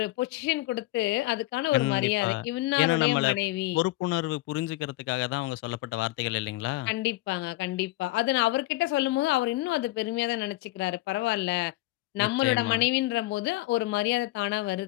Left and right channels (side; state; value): right; quieter; 18.7 dB